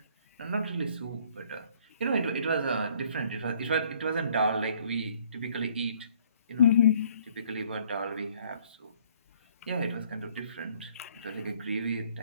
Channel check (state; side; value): inverted; both; correlation -0.61